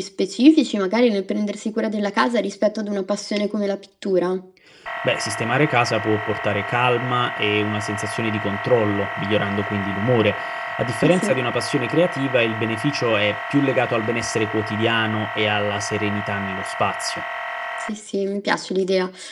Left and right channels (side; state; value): both; identical; correlation 1.00